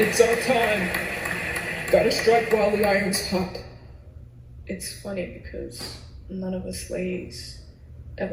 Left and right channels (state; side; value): identical; both; correlation 1.00